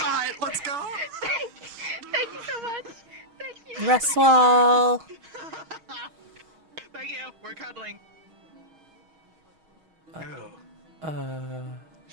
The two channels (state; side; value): late; left; 6.3 ms